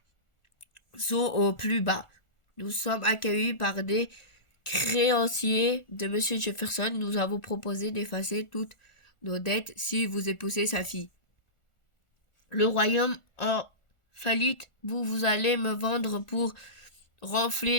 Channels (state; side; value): late; right; 1.4 ms